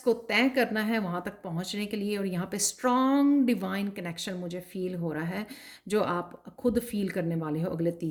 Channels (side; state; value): both; identical; correlation 1.00